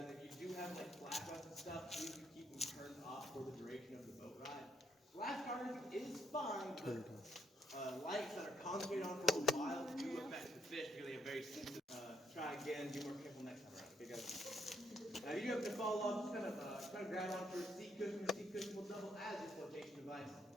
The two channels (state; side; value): normal; both; correlation 0.75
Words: if you do have like flashlights and stuff, please do keep them turned off for the duration of the boat ride. Flash charging is fine, but lights that are concentrated on for a while do affect the fish because they have very sensitive. Try again, be more careful next time around. Okay, guys. Now you have to fall off, just kind of grab onto a seat cushion. The seat cushion will double as a flotation device.